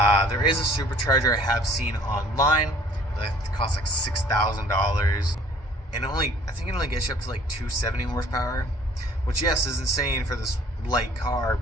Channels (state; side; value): normal; both; correlation 0.54